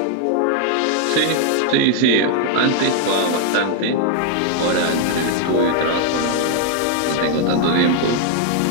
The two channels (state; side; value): different; both; correlation 0.00